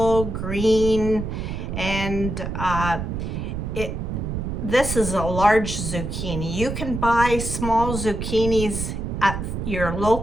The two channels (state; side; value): noise; right; rumble, 4 dB below the sound